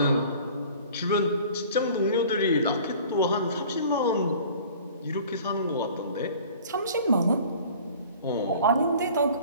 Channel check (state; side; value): inverted; both; correlation -0.47